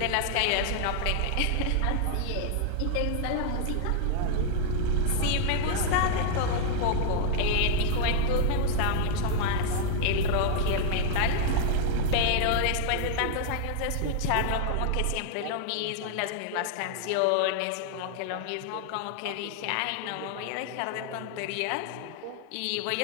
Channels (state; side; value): different; both; correlation 0.00